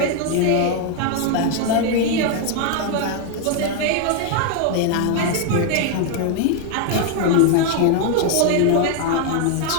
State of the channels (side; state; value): both; different; correlation 0.01